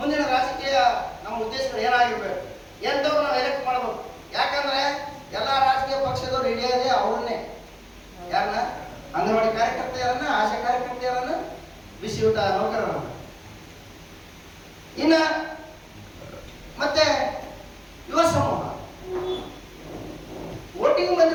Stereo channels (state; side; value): identical; both; correlation 1.00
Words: ರಾಜಕೀಯ ನಮ್ಮ ಉದ್ದೇಶಗಳು ಏನಾಗಿರ್ಬೇಕು, ಎಂತವ್ರು ನಾವು ಎಲೆಕ್ಟ್ ಮಾಡಬೇಕು. ಯಾಕಂದ್ರೆ ಎಲ್ಲಾ ರಾಜಕೀಯ ಪಕ್ಷದವ್ರು ಹಿಡಿಯೋದೇ ಅವ್ರನ್ನೇ, ಯಾರನ್ನ, ಅಂಗನವಾಡಿ ಕಾರ್ಯಕರ್ತೆಯರನ್ನ, ಆಶಾ ಕಾರ್ಯಕರ್ತೆಯರನ್ನ, ಬಿಸಿ ಊಟ ನೌಕರರನ್ನ. ಇನ್ನ ಮತ್ತೆ ಯುವ ಸಮೂಹ, ವೋಟಿಂಗ್